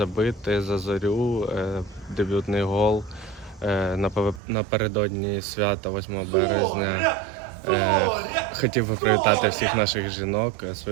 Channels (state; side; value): drops out; left; at 4.4 s